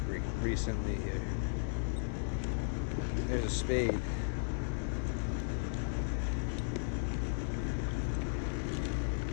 recently here. There's a spade.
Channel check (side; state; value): right; silent; digital silence